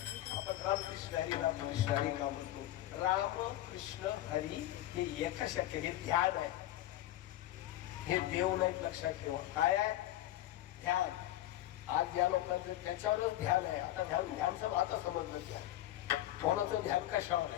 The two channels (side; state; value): right; quieter; 14.3 dB